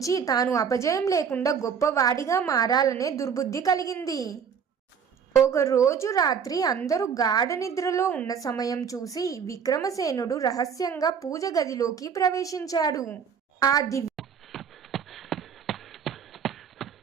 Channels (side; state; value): left; quieter; 7.0 dB